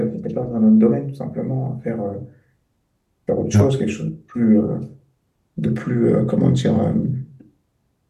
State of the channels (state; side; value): identical; both; correlation 1.00